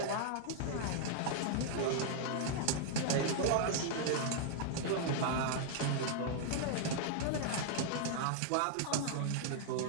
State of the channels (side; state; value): both; different; correlation -0.01